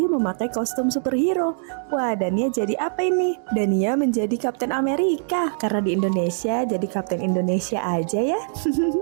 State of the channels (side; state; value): left; silent; digital silence